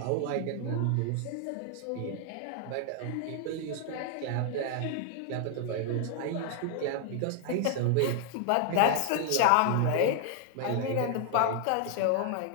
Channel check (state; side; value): different; both; correlation 0.00